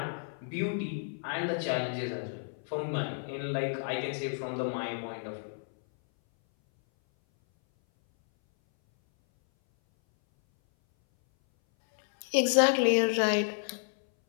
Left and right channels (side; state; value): right; silent; 57 dB below the other